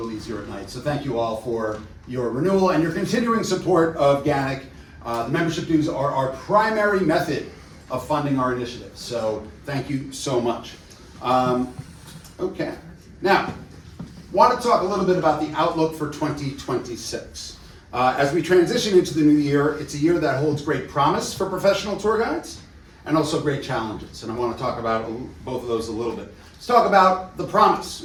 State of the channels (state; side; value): identical; both; correlation 1.00